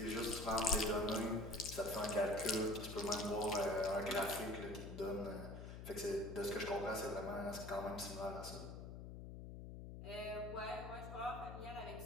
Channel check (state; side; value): noise; left; hum, 9 dB below the sound